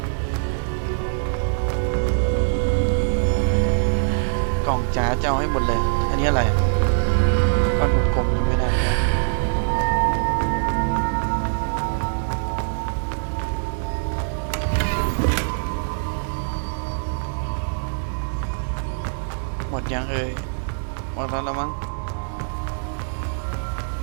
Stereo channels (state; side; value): silent; left; digital silence